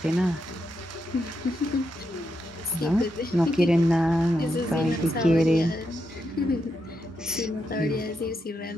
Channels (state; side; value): normal; both; correlation 0.83